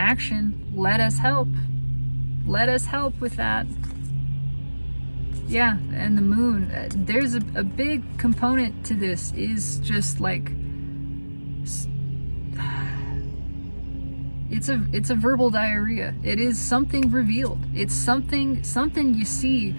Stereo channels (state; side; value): inverted; both; correlation -1.00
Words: Let us help. Let us help with that. Yeah, and the moon. There's a big component to this is just like it's a verbal diarrhea. It is something revealed. It's something you see